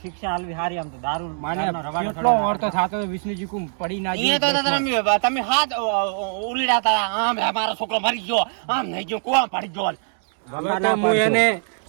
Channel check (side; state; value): left; silent; 64 dB below the other